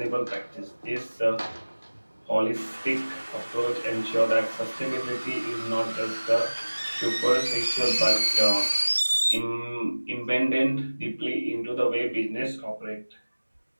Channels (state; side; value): inverted; both; correlation -1.00